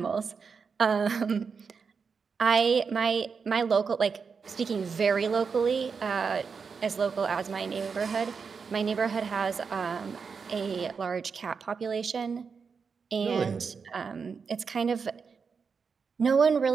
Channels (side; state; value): left; quieter; 5.6 dB